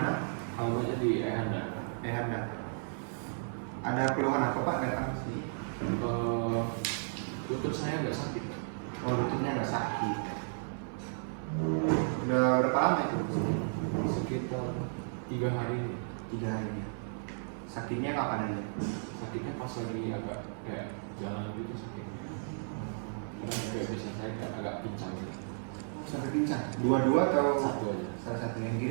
Alamatnya di Ehanda. Ehanda. Ada keluhan apa Pak datang ke sini? Lutut saya nggak sakit. Oh, lututnya nggak sakit. Udah berapa lama itu? Sekitar 3 hari. 3 hari. Sakitnya kapan aja? Sakitnya pas lagi agak kayak jalan gitu sakitnya. Karena kayak bisa saya kayak agak pincang gitu. Sampai pincang? Dua-dua atau? Satu aja. Salah satu, yang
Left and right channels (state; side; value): silent; left; 55 dB below the other